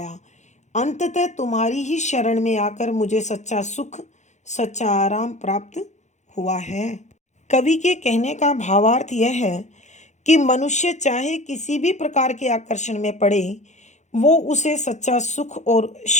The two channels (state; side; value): late; right; 0.34 ms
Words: अंततः तुम्हारी ही शरण में आकर मुझे सच्चा सुख, सच्चा आराम प्राप्त हुआ है। कवि के कहने का भावार्थ यह है कि मनुष्य चाहे किसी भी प्रकार के आकर्षण में पड़े, वो उसे सच्चा सुख और